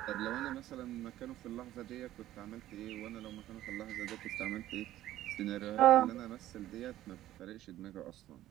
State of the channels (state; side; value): quieter; left; 13.9 dB